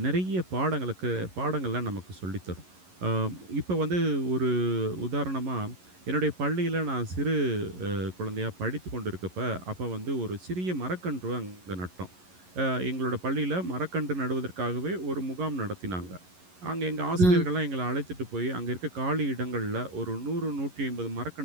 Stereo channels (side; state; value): left; late; 11 ms